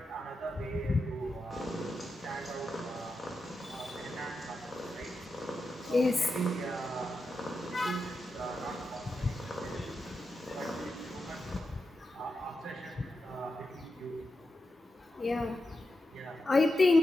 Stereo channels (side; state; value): both; normal; correlation 0.88